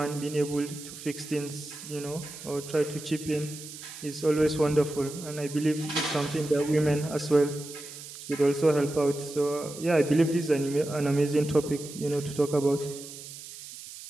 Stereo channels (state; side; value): noise; right; hiss, 13 dB below the sound